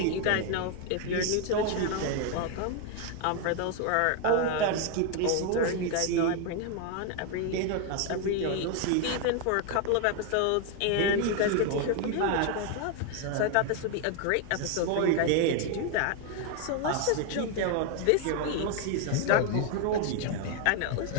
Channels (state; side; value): different; both; correlation 0.01